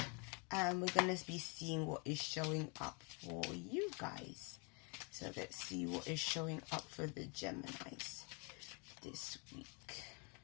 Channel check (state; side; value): quieter; right; 34.4 dB